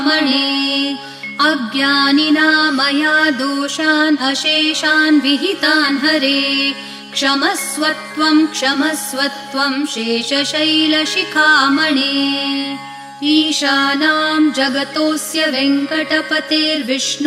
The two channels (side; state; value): both; identical; correlation 1.00